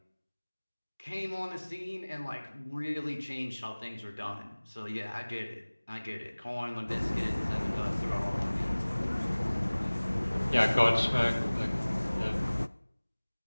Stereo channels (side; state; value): both; inverted; correlation -1.00